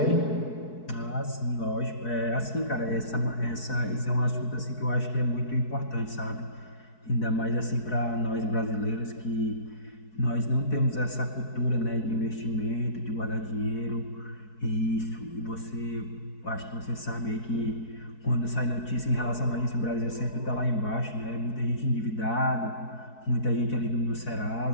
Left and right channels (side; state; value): right; late; 4.6 ms